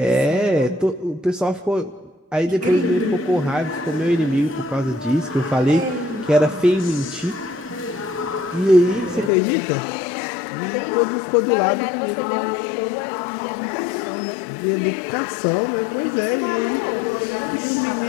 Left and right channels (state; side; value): drops out; right; at 9.3 s